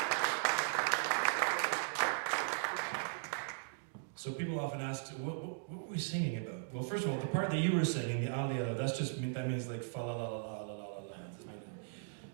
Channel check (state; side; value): silent; left; digital silence